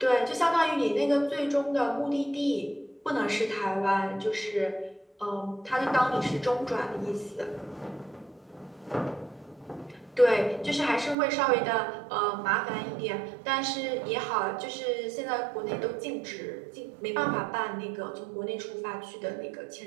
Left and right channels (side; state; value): left; drops out; at 11.2 s